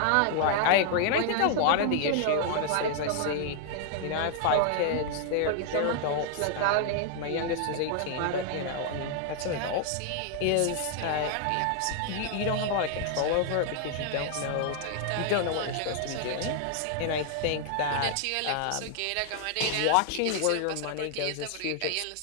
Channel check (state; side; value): different; both; correlation 0.00